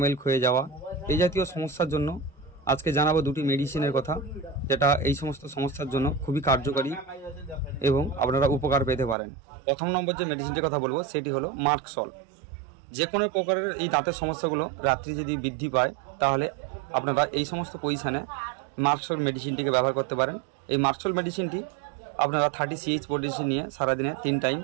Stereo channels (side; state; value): left; drops out; at 9.2 s